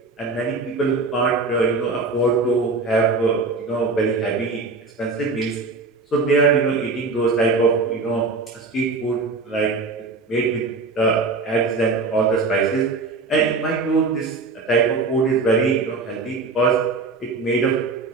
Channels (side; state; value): left; quieter; 3.9 dB